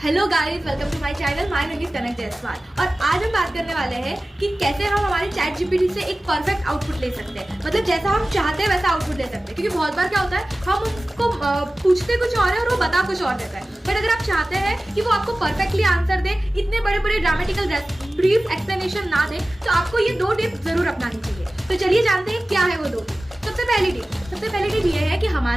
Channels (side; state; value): both; normal; correlation 0.96